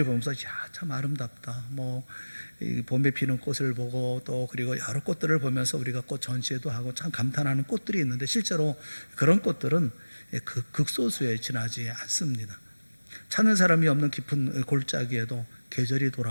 보면서 참 아름답다, 이 봄에 피는 꽃을 보고 또 그리고 여러 꽃들을 보면서 우리가 꽃 전시회도 하고 참 감탄하는 꽃들이 있는데 실제로 그런 꽃들은 극소수에 지나지 않습니다. 찾는 사람이 없는 깊은 골짜기에도 계절이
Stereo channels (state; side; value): inverted; both; correlation -1.00